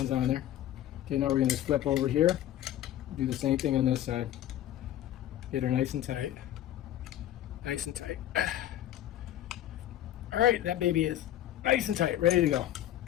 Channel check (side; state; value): right; quieter; 12.6 dB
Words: on there. Okay, now we're going to flip over here. Do the same thing on this side. Get her nice and tight. Nice and tight. Alright, that baby is nice and tight, ready to go.